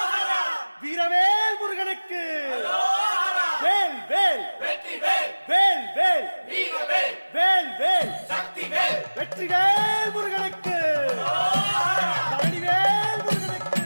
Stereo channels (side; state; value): both; inverted; correlation -1.00